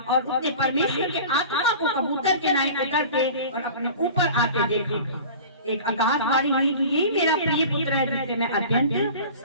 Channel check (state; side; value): inverted; both; correlation -0.39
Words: और उसने परमेश्वर के आत्मा को कबूतर के नाई उतरते और अपने ऊपर आते देखा। एक आकाशवाणी हुई कि यही मेरा प्रिय पुत्र है जिससे मैं अत्यंत